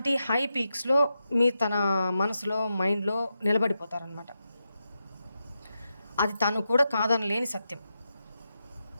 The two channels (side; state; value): both; inverted; correlation -0.88